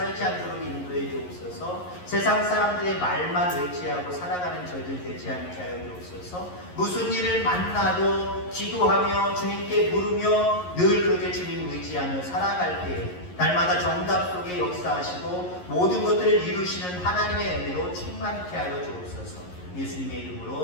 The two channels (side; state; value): right; late; 11 ms